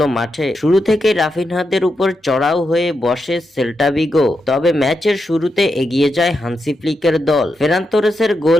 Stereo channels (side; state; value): both; normal; correlation 0.85